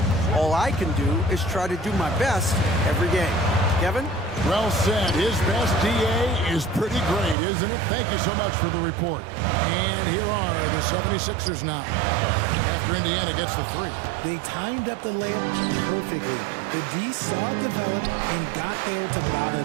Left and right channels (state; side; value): drops out; left; at 7.4 s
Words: All I can do is try to do my best every game. Kevin? Well said. His best DA is pretty great, isn't it? Thank you so much for the report. And here are the 76ers now. After Indiana gets the 3. They timed up the layup perfectly. The D saw it develop and got there to bother